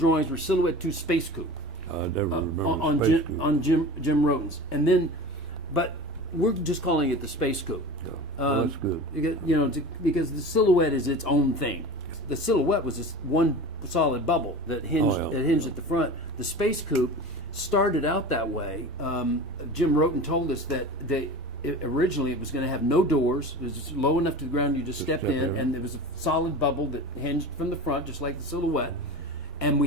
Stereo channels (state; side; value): normal; both; correlation 0.33